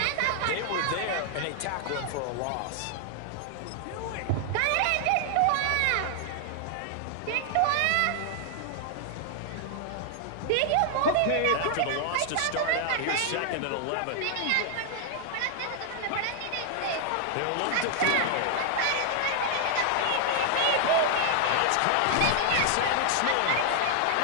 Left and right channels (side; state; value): both; different; correlation 0.00